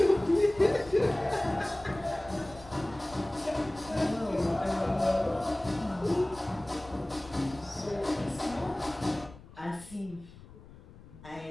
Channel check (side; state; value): left; noise; rumble, 20 dB below the sound